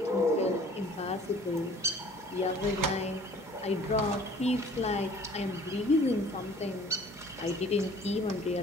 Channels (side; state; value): both; normal; correlation 0.51